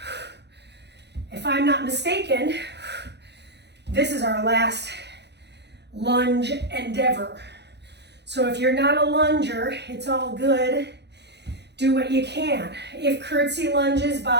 If I'm not mistaken, this is our last lunge endeavor. So if you're not a lunger, it's all good. Do what you can. If curtsy lunges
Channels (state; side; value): late; left; 0.50 ms